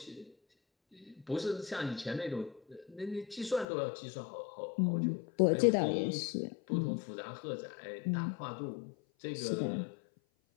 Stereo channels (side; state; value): right; drops out; at 3.7 s